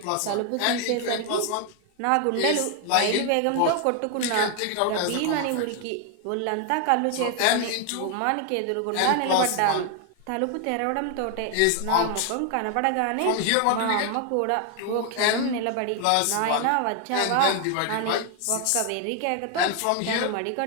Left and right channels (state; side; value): different; both; correlation 0.01